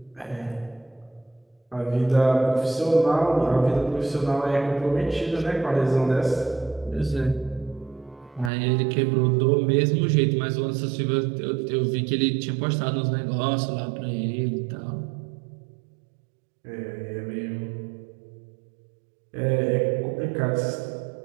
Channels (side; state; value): left; drops out; at 8.5 s